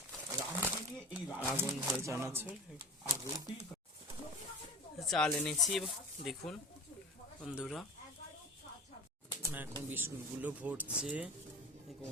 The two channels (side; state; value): both; normal; correlation 0.35